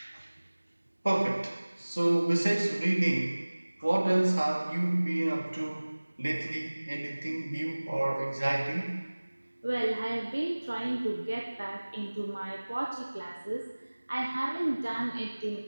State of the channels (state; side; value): inverted; both; correlation -1.00